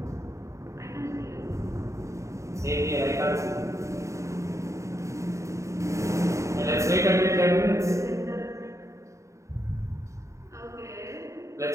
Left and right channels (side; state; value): left; late; 0.15 ms